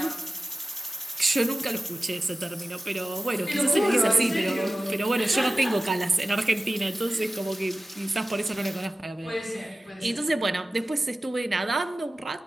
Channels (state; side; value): normal; both; correlation 0.95